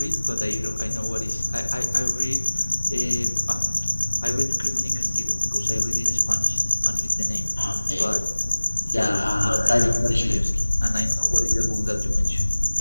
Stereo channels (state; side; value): inverted; both; correlation -1.00